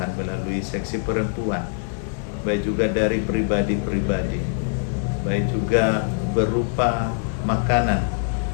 melalui seksi perempuan, baik juga dari pribadi-pribadi, baik juga berupa makanan,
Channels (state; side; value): silent; right; digital silence